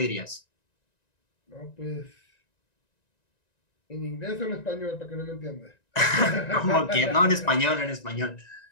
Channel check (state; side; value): late; right; 1.9 ms